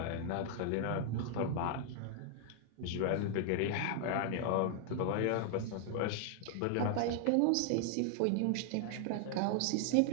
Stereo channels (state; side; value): different; both; correlation 0.00